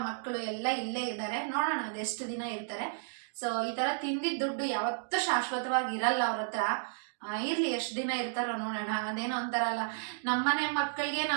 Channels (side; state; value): left; silent; digital silence